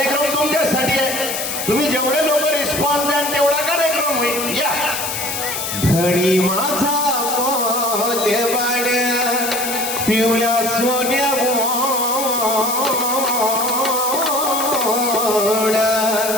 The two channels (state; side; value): noise; left; hiss, 4 dB below the sound